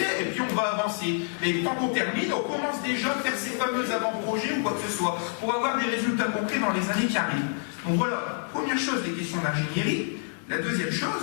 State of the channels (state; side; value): silent; right; 60 dB below the other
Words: et puis on va avancer. Et tant qu'on termine, on commence déjà à faire ces fameux avant-projets ou quoi que ce soit, pour avoir des résultats concrets dans les années qui arrivent. Donc voilà, première chose, les questions d'ingénierie. La deuxième